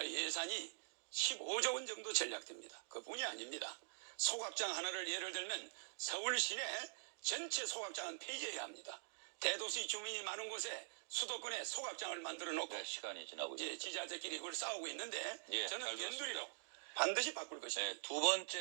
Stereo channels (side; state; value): left; silent; digital silence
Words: 예산이 15조 원 정도 전략됩니다. 그뿐이 아닙니다. 소각장 하나를 예를 들면 서울 시내 전체 소각장은 폐지해야 합니다. 대도시 주민이 많은 곳에 수도권에 소각장을 만들어 놓고 네, 시간이 지나고 이제 있습니다. 지자체끼리 그걸 싸우고 있는데 예, 저는 잘 들었습니다. 변두리로 반드시 바꿀 것입니다. 네, 두